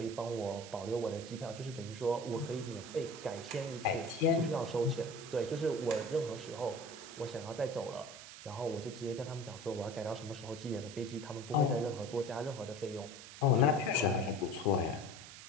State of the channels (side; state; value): right; noise; hiss, 14 dB below the sound